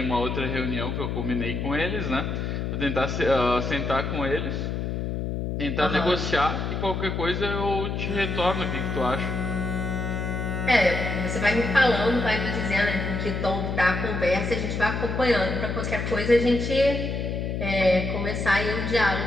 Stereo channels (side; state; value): left; noise; hum, 2 dB below the sound